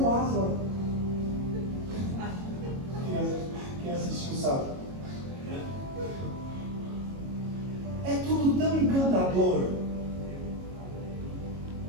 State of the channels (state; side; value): late; left; 22 ms